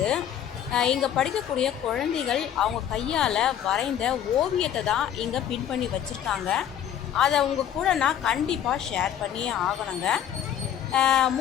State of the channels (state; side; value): quieter; right; 10.0 dB